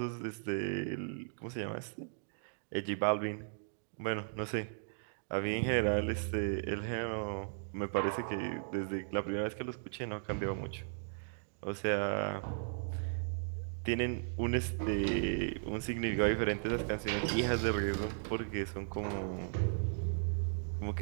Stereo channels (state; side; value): silent; left; digital silence